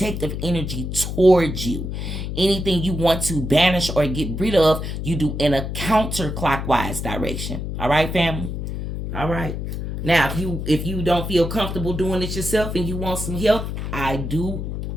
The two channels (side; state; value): left; noise; hum, 5 dB below the sound